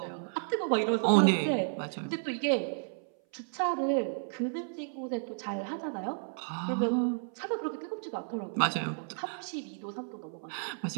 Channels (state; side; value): silent; left; 56 dB below the other